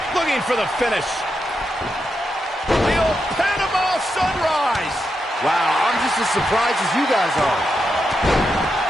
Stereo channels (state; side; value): normal; both; correlation 0.85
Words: Looking for the finish. The old Panama Sunrise. Wow, I'm just as surprised as you guys are.